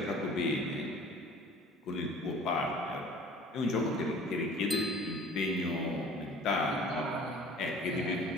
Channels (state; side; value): normal; both; correlation 0.48